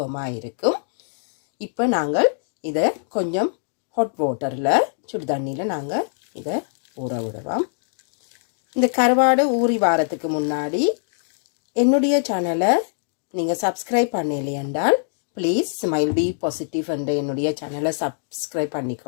இருக்கும். இப்போ நாங்கள் இதை கொஞ்சம் ஹாட் வாட்டரில் சுடு தண்ணியில் நாங்கள் இதை ஊற விடுவோம். இந்த கருவாடு ஊறி வாரத்துக்கு முன்னாடி என்னுடைய சேனலை நீங்கள் சப்ஸ்கிரைப் பண்ணலையென்றால் ப்ளீஸ் ஸ்மைல் பி பாசிட்டிவ் என்ற என்னுடைய சேனலை சப்ஸ்கிரைப்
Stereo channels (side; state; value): right; silent; digital silence